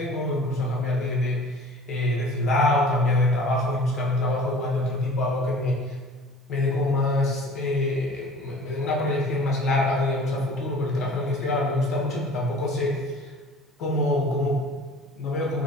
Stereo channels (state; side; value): normal; both; correlation 0.45